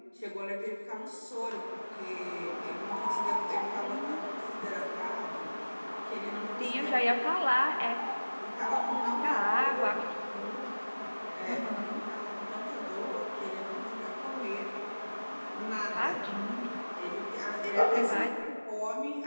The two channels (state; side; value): inverted; both; correlation -1.00